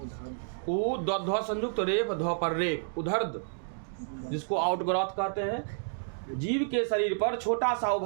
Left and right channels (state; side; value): silent; left; digital silence